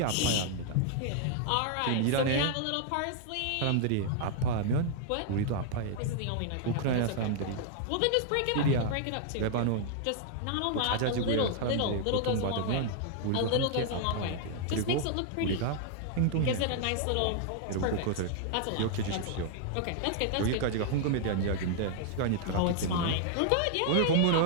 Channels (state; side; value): different; both; correlation -0.01